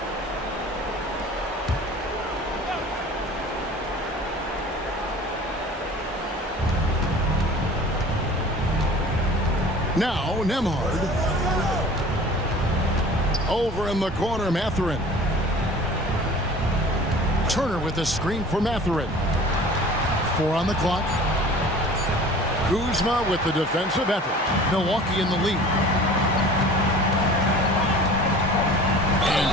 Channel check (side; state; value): both; normal; correlation 0.44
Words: Now, Nemhard. Over in the corner, Mathurin. Turner with the screen for Mathurin. 4 on the clock. Kuzma with the defensive effort. Milwaukee in the lead. And